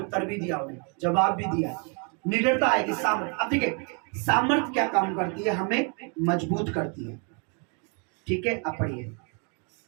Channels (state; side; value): quieter; left; 36.6 dB